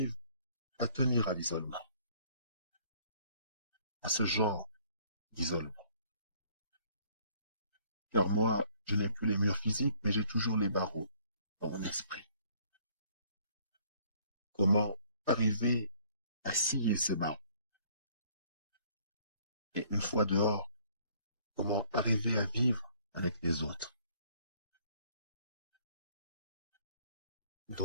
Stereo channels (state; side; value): inverted; both; correlation -0.60